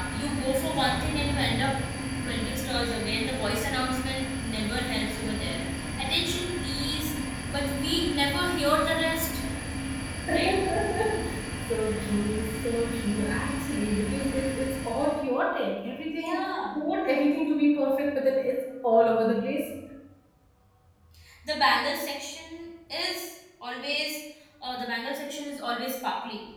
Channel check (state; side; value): identical; both; correlation 1.00